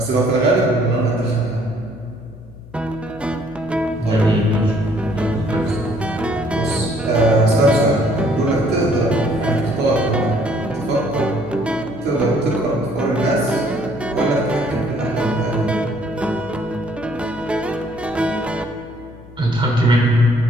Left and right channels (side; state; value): left; noise; hum, 20 dB below the sound